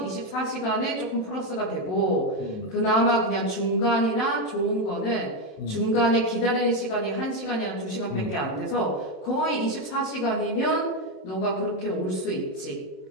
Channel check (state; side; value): late; right; 27 ms